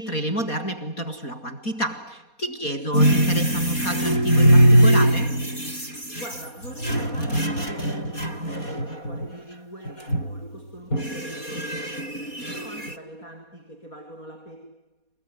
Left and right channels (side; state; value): right; late; 4.2 ms